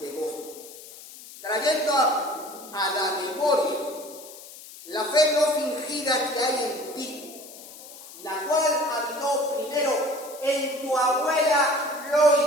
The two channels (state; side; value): noise; left; hiss, 17 dB below the sound